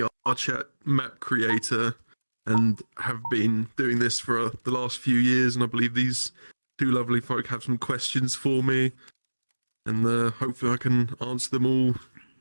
map creator, and have been doing this for the last few years. And I believe these two lovely folk have some questions for me, and hopefully I can answer them all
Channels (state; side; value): inverted; both; correlation -1.00